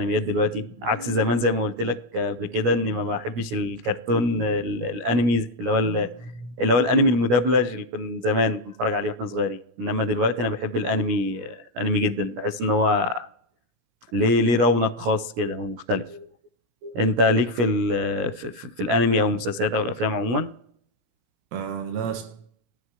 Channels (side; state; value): left; late; 17 ms